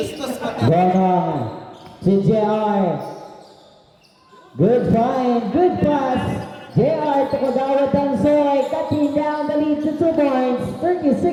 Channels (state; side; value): identical; both; correlation 1.00